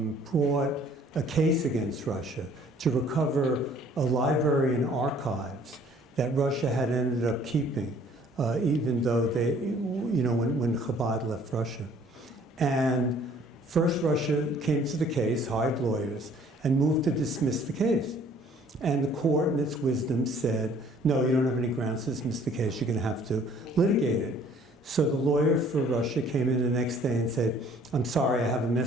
brought a case against Russia to recover a library and archives that Russia had ended up keeping, even though they, when Chabad left Russia. And first Russia came to the case, hired lawyers, and moved to dismiss the case. And the court, in its wisdom, said, no, you don't have any grounds to dismiss the case, you're going to have to litigate it. So the lawyer for Russia came in the next day and said, I'm sorry, I have a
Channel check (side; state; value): both; normal; correlation 0.57